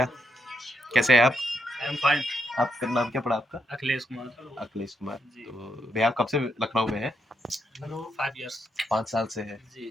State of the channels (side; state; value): both; normal; correlation 0.78